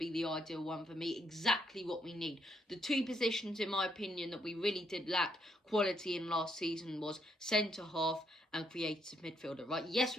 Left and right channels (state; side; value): normal; both; correlation 0.74